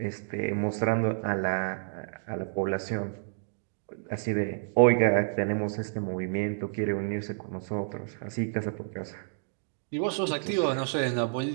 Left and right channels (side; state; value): left; silent; digital silence